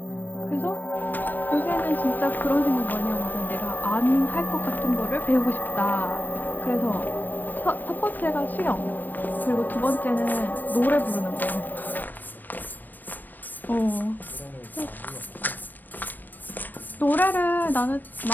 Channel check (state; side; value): late; right; 0.090 ms